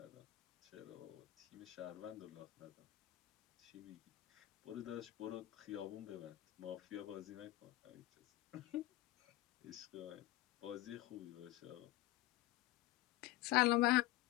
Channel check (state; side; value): quieter; right; 17.0 dB